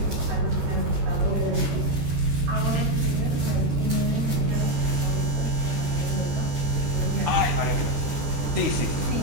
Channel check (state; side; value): late; left; 13 ms